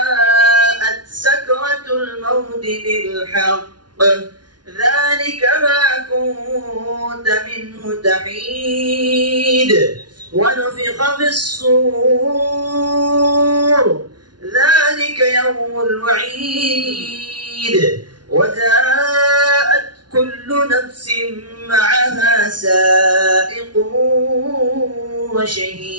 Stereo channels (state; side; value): late; left; 0.70 ms